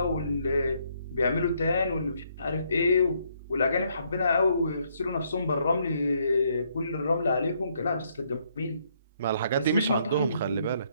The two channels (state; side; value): inverted; both; correlation -0.71